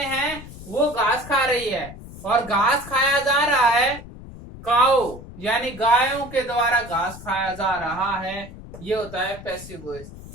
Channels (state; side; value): noise; left; rumble, 15 dB below the sound